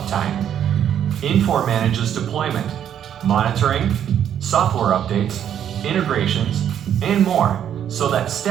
Infor manages deployment, monitoring, software updates, integrations, and more so that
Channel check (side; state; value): left; quieter; 9.6 dB